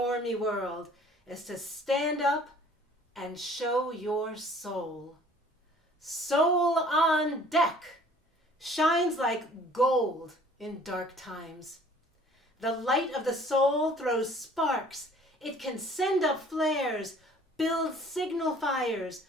world is to stand up and show your soul. Soul on deck shines like gold in dark times. The light of the soul throws sparks. It can send up flares, build signal fires,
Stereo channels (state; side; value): normal; both; correlation 0.53